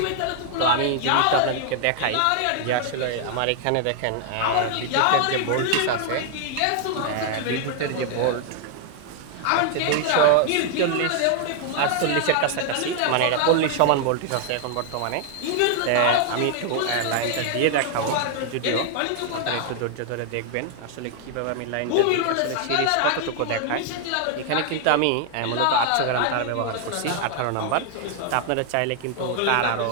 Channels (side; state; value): both; different; correlation 0.00